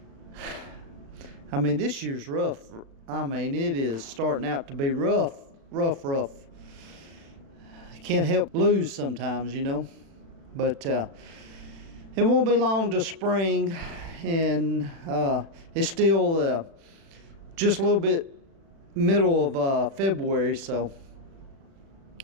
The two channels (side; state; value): left; late; 36 ms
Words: I mean, this year's rough. I mean, it is starting out to be rough. You can't help lose sometimes, you know. But it won't be long to spring, and it's still just a little bit middle of February, so